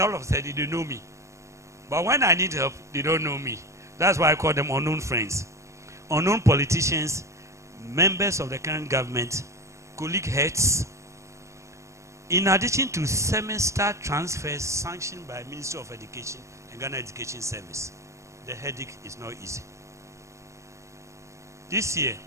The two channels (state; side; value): late; left; 0.14 ms